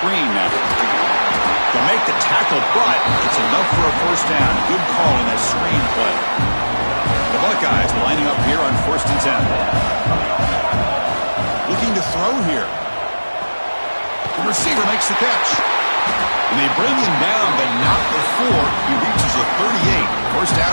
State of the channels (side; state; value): both; inverted; correlation -1.00